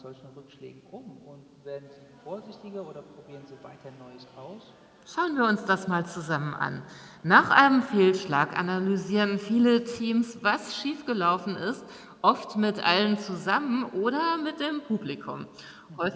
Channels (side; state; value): both; identical; correlation 1.00